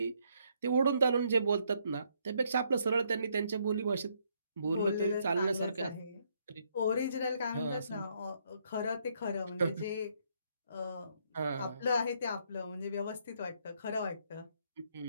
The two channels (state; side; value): inverted; both; correlation -0.72